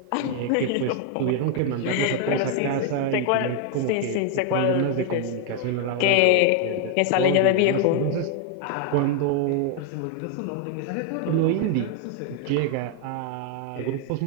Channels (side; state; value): both; different; correlation 0.01